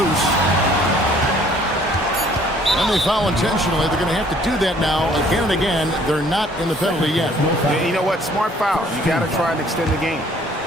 And they foul intentionally. They're going to have to do that now again and again. They're not in the penalty yet. Yeah, you know what? Smart foul. You got to try and extend the game.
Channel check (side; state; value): both; normal; correlation 0.58